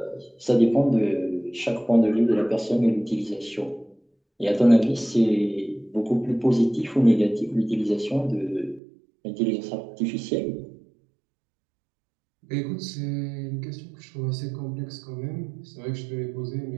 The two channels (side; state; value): left; drops out; at 8.8 s